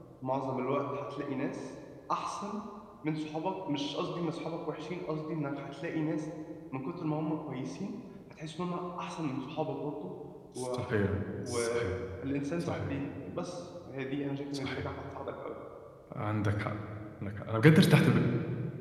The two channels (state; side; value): identical; both; correlation 1.00